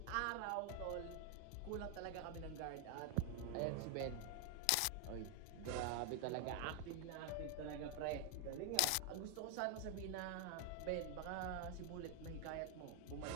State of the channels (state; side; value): different; both; correlation 0.00